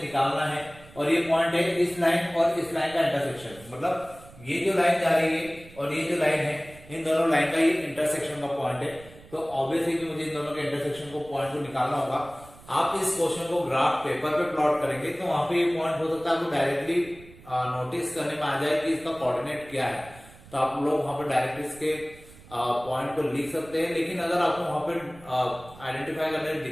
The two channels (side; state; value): right; noise; rumble, 21 dB below the sound